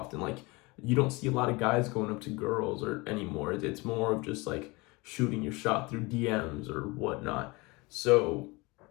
Like, you don't see a lot of guys going up to girls or anymore. It's more of just like shooting your shot through DMs or whatnot. So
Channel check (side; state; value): right; quieter; 24.9 dB